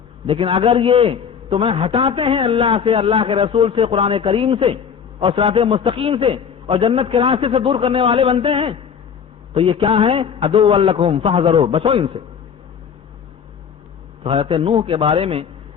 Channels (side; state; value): right; quieter; 7.2 dB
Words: لیکن اگر یہ تمہیں ہٹاتے ہیں اللہ سے، اللہ کے رسول سے، قرآن کریم سے اور صراط مستقیم سے اور جنت کے راستے سے دور کرنے والے بنتے ہیں، تو یہ کیا ہے؟ عدو لکم فاحذروا، بچو ان سے۔ تو حضرت نوح کے بارے میں